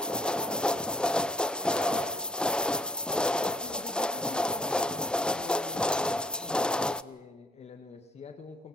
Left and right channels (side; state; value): both; normal; correlation 0.63